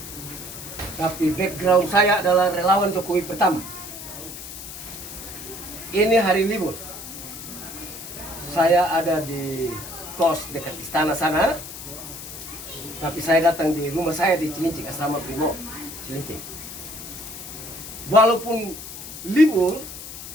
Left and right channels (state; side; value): noise; left; hiss, 11 dB below the sound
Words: Tapi background saya adalah relawan Jokowi pertama. Ini hari libur. Saya ada di kos dekat istana sana. Tapi saya datang di rumah saya di Cilincing, asrama Brimob Cilincing. Walaupun libur,